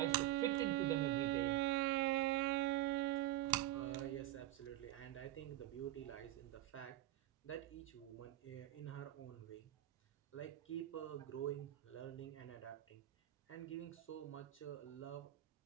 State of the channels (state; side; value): quieter; left; 15.1 dB